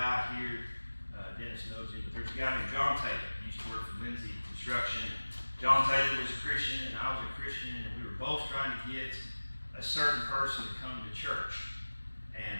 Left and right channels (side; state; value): both; inverted; correlation -1.00